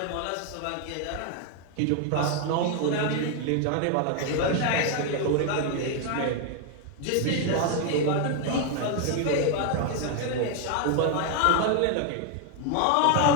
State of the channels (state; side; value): different; both; correlation 0.01